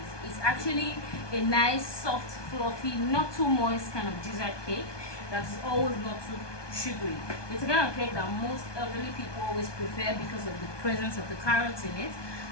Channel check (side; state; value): right; late; 1.2 ms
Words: It's actually a nice, soft, fluffy, not too moist kind of dessert cake that is always not too sugary. It's a kind of cake that most elderly people always prefer because of the presence of the carrots in it.